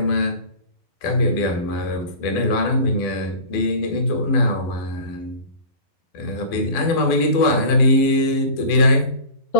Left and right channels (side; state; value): right; late; 12 ms